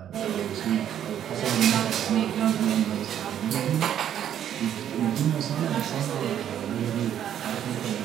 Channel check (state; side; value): quieter; left; 10.1 dB